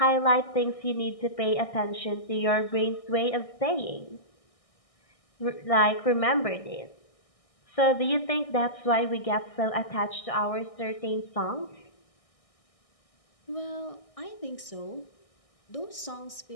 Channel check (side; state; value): right; late; 1.6 ms